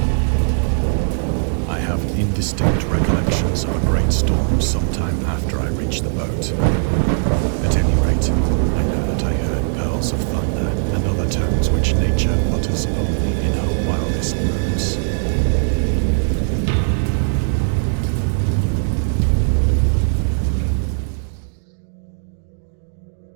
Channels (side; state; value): left; silent; digital silence